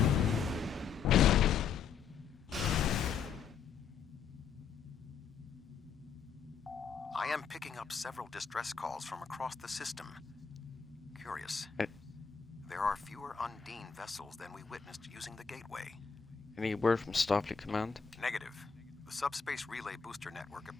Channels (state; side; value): quieter; right; 6.5 dB